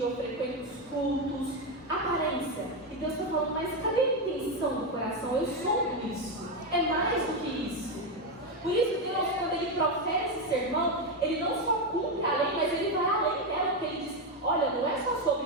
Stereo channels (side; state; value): both; normal; correlation 0.09